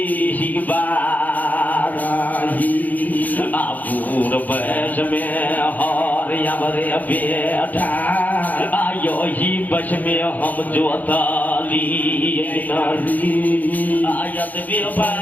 बाराही आपूर बस में हर यावरे बेटा आयो ही बस में हम जोताली नरी आयत बे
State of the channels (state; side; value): late; right; 0.081 ms